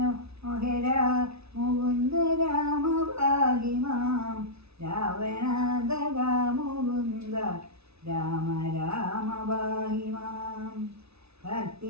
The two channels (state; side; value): late; left; 0.79 ms